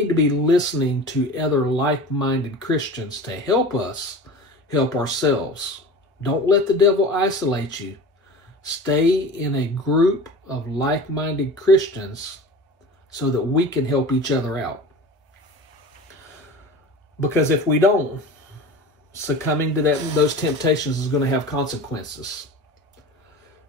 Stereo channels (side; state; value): both; normal; correlation 0.35